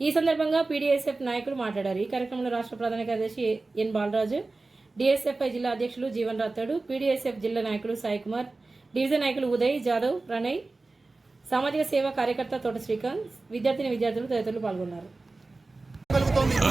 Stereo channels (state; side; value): quieter; left; 3.4 dB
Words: ఈ సందర్భంగా పీడీఎస్ఎఫ్ నాయకులు మాట్లాడారు. ఈ కార్యక్రమంలో రాష్ట్ర ప్రధాన కార్యదర్శి ఎన్ బాలరాజు, డిఎస్ఎఫ్ఐ జిల్లా అధ్యక్షులు జీవన్ రాథోడ్, పీడీఎస్ఎఫ్ జిల్లా నాయకులు సాయి కుమార్, డివిజన్ నాయకులు ఉదయ్ జాదవ్, ప్రణయ్, సామాజిక సేవా కార్యకర్త తోట శ్రీకాంత్, విద్యార్థులు తదితరులు పాల్గొన్నారు.